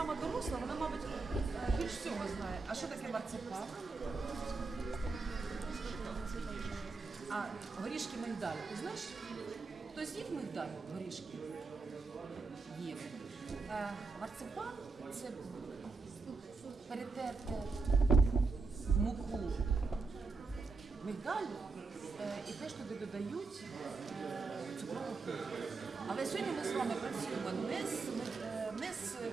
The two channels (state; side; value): quieter; left; 4.1 dB